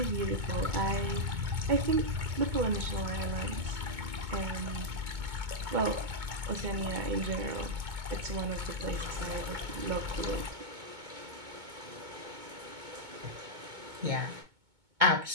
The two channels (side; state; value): left; late; 2.2 ms